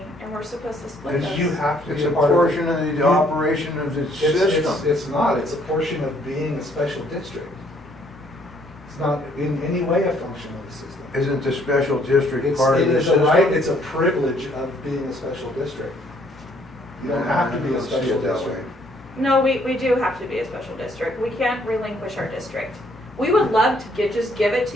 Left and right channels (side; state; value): both; normal; correlation 0.65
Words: and we're supposed to split It's- those. You have to It's be a a part of it. portion of the operation of the system. It's not, it's a portion of being a special district. It's not in any way a function of the system. Isn't the special district It's, part of it the is a system? right, it's a privilege of being a special district. You don't have to be I a don't see special it that district. way. No, we do have to be a special district. We can't relinquish our district. We would love to just give it